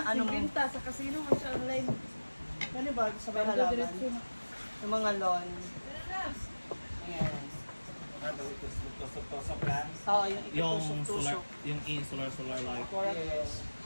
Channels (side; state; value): both; inverted; correlation -1.00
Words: ano mo. Binta sa casino mo siya online. Ano ba? Sa mga halaman? Yung mga lawn. Ayan. Tusok-tusok lang. Oo, yung ikitusok-tusok. Yung solar light. Yes.